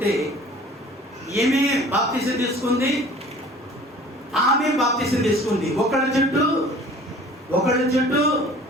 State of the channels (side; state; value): both; normal; correlation 0.48